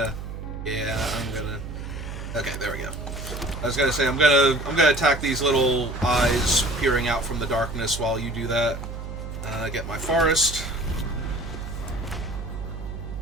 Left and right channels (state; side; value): noise; right; hum, 8 dB below the sound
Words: Yeah, I'm gonna... Okay, there we go. I was gonna say, I'm gonna attack these little eyes peering out from the darkness while you do that. Get my forest.